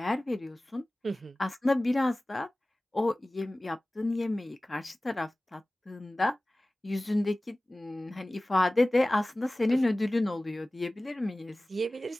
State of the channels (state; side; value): normal; both; correlation 0.98